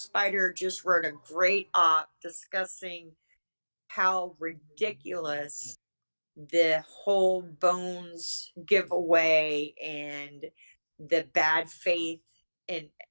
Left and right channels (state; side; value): inverted; both; correlation -1.00